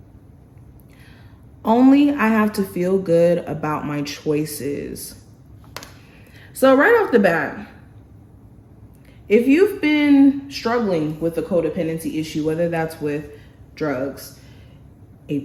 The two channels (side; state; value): both; identical; correlation 1.00